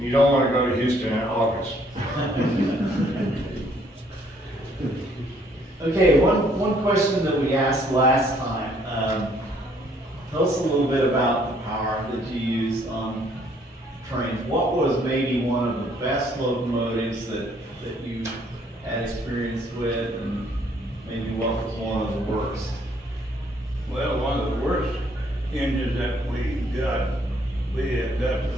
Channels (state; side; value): normal; both; correlation 0.64